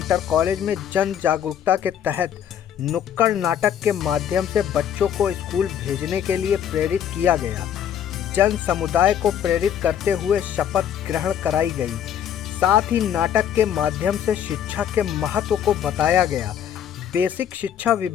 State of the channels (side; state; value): right; quieter; 9.4 dB